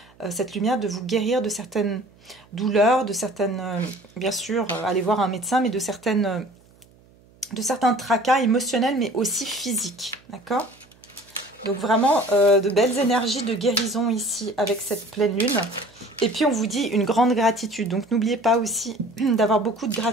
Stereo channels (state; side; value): noise; right; hum, 29 dB below the sound